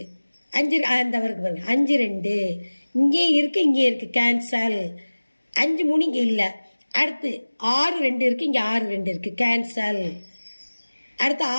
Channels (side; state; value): both; inverted; correlation -1.00